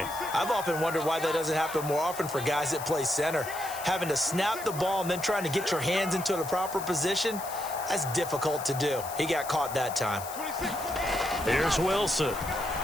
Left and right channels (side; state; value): left; noise; hiss, 12 dB below the sound